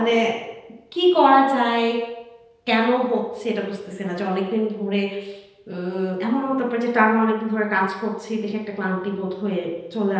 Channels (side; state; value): both; identical; correlation 1.00